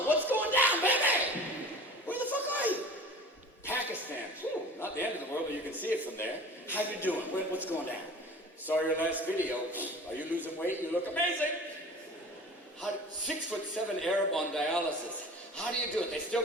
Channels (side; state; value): both; normal; correlation 0.40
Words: what's going down, baby? Where the fuck are you? Pakistan. Whew, not the end of the world, but you can see it from there. How you doing? What's going down? Saw your last video. Are you losing weight? You look amazing. 6'7" Arab on dialysis. How do you do it? They